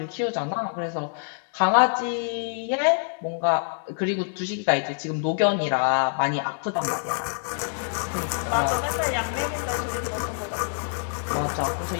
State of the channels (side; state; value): right; silent; 61 dB below the other